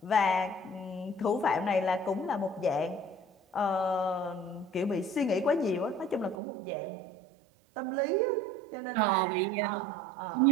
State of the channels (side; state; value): left; drops out; at 6.4 s